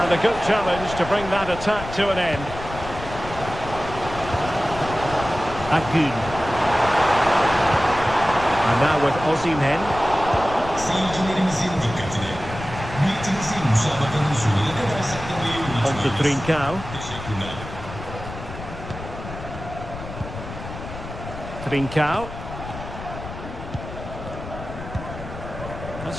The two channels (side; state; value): left; noise; rumble, 11 dB below the sound